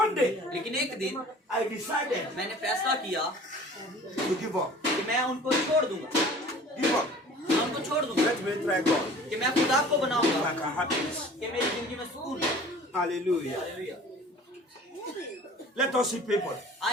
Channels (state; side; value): normal; both; correlation 0.46